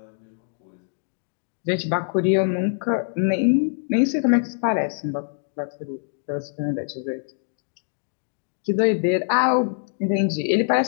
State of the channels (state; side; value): silent; right; digital silence